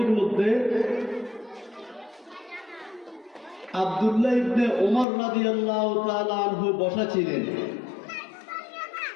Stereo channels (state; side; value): drops out; right; at 5.1 s